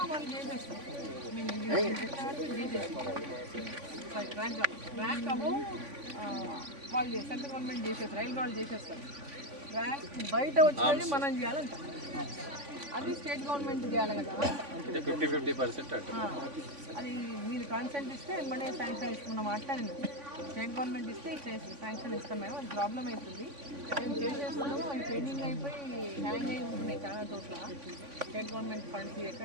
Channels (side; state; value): left; late; 3.5 ms